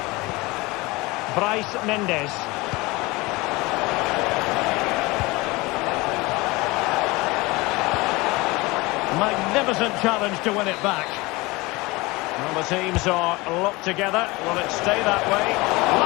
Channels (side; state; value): right; quieter; 22.8 dB